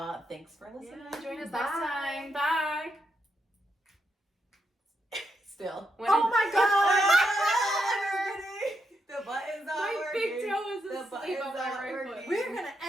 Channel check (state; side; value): normal; both; correlation 0.82